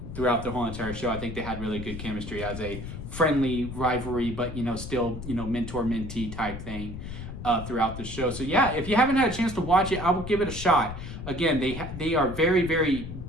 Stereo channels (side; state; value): left; noise; rumble, 9 dB below the sound